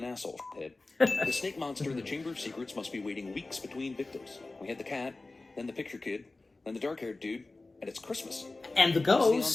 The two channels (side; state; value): right; quieter; 3.3 dB